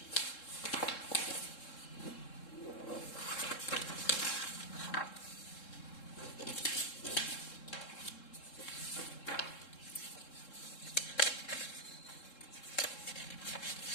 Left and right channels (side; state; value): right; late; 3.7 ms